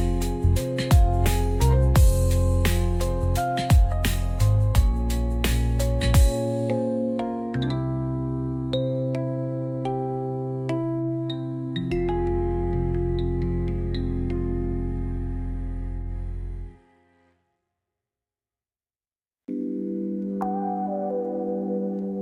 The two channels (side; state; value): both; identical; correlation 1.00